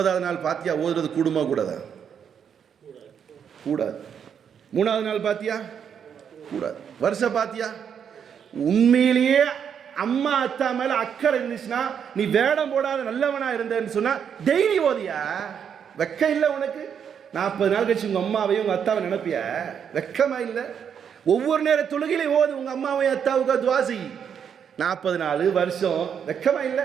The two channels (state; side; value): quieter; left; 7.8 dB